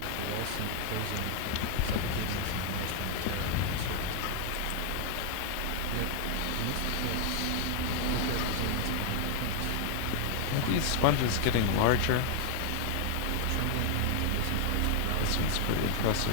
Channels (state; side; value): different; both; correlation 0.00